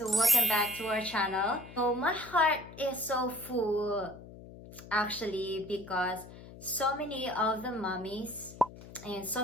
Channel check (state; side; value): noise; left; hum, 16 dB below the sound